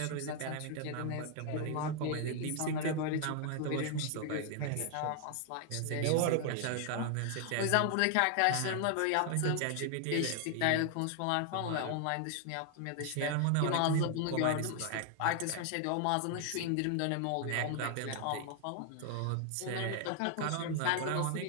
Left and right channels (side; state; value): both; different; correlation 0.00